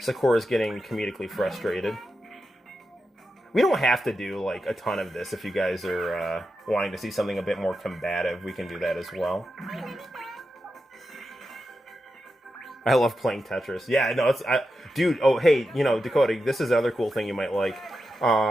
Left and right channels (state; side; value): normal; both; correlation 0.89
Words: getting comedically frustrated. We don't have to do, like, a ton of this. If you guys are wanting to see something a bit more combative, we can do that as well. I love playing Tetris. Yeah, no, it's... dude, oh, hey, you know, Dakota, this is another cool thing you might like.